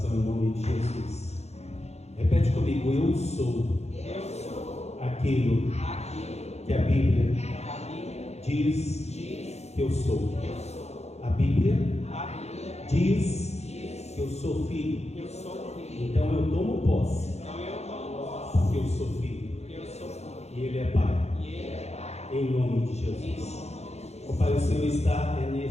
em nome de Jesus. Repete comigo: eu sou aquilo que a Bíblia diz que eu sou. A Bíblia diz que eu sou filho. Então eu tomo posse, porque eu sou filho. E Ele é Pai. Em nome de Jesus. Ó Pai, o Senhor está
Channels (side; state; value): right; late; 0.31 ms